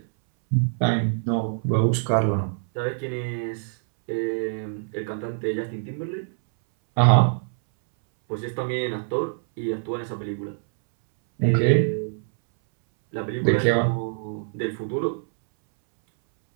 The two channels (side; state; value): left; silent; 62 dB below the other